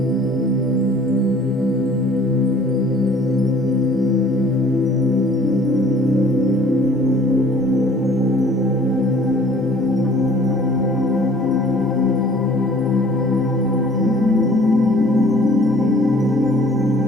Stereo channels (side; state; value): both; normal; correlation 0.52